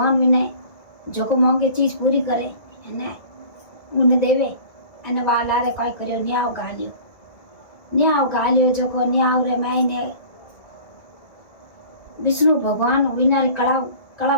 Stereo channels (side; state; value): right; late; 1.9 ms